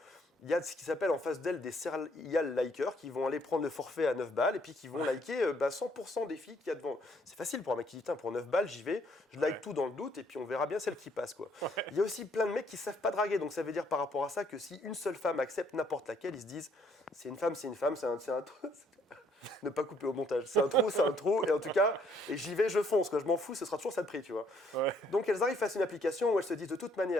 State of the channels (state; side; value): normal; both; correlation 0.66